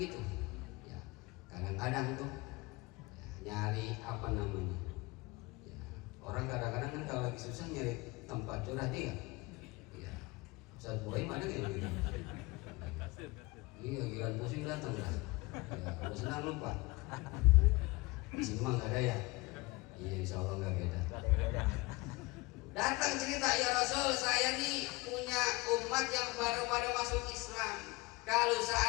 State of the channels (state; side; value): quieter; right; 23.2 dB